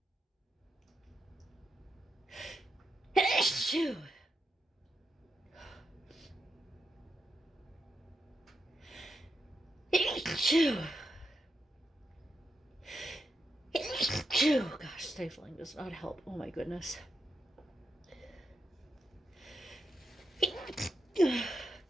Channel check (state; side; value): normal; both; correlation 0.85